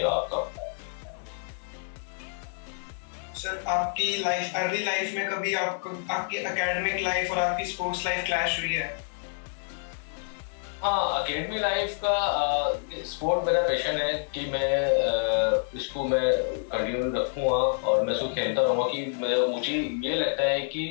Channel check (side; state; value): right; silent; digital silence